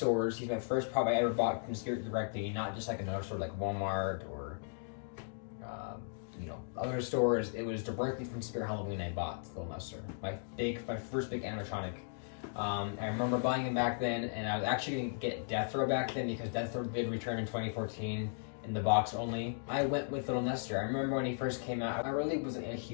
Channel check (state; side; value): silent; right; digital silence